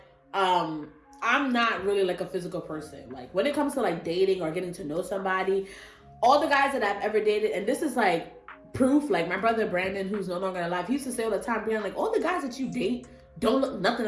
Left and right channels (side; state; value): both; identical; correlation 1.00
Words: I'm not really like a physical person. Like when it comes to like dating or getting to know somebody, all the guys that I've ever dated, and this is like proof, like my brother Brandon, who's no longer alive, he used to say all the time, Briana, like all the guys that you date don't look nothing